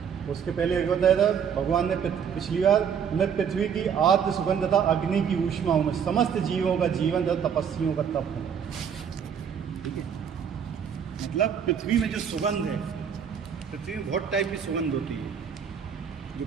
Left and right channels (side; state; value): left; quieter; 7.6 dB